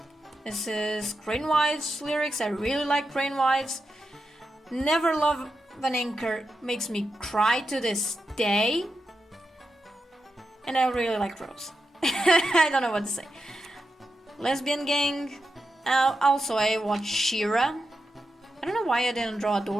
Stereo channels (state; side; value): normal; both; correlation 0.88